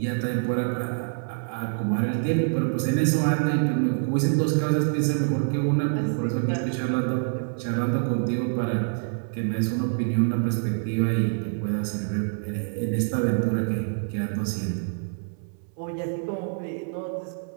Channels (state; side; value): silent; left; 61 dB below the other